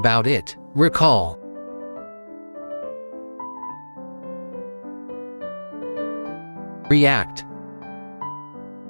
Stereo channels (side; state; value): both; inverted; correlation -1.00